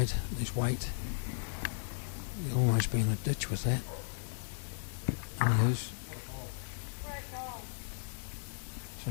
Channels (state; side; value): silent; right; digital silence